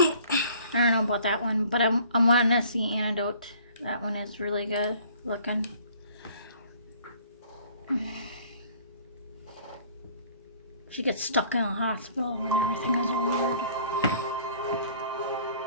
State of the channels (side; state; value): both; inverted; correlation -0.54